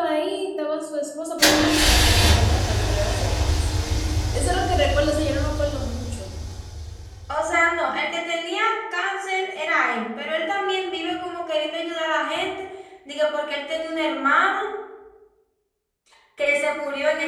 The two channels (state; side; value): identical; both; correlation 1.00